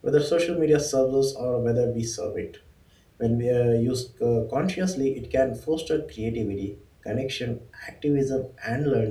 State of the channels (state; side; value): identical; both; correlation 1.00